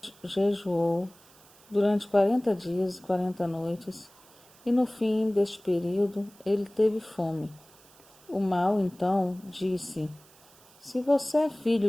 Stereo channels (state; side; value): noise; right; hiss, 26 dB below the sound